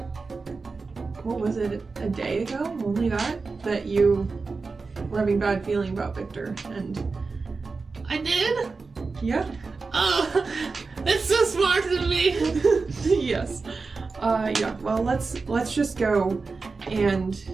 what was it, a day ago? Only that you were having bad feeling about Victor, and... I did? Yeah. Oh, that's so smart of me. Yes. Yeah, well, let's just go and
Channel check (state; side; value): quieter; left; 4.2 dB